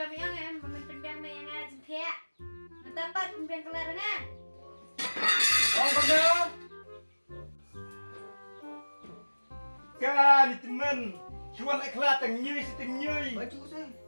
angan memimpin biang yang ngajin kaya. Mentapat pimpinan kelar na. Oh, betul. Kan teman, cuan ikhlas tengyui setengyui. Baju saya.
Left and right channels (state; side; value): inverted; both; correlation -1.00